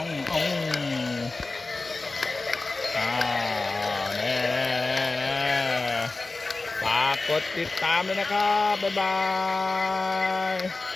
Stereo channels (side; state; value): right; quieter; 3.4 dB